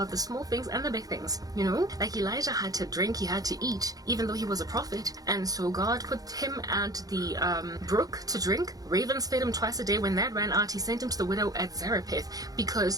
the small things and the big things, you know? Like Elijah had to drink, he had to eat, even though he was a prophet. And so God put him at the brook to drink. Ravens fed him twice a day. When that ran out, he sent him to the widow at Zarephath,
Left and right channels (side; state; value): left; late; 0.18 ms